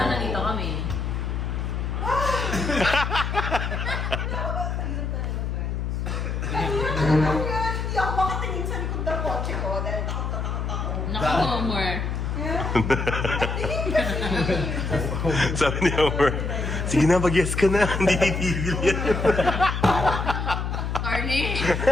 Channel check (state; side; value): noise; left; hum, 2 dB below the sound